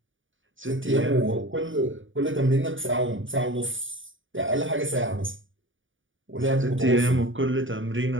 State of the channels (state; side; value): late; left; 0.57 ms